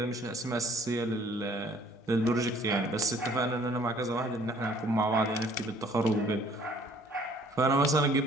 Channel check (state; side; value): normal; both; correlation 0.57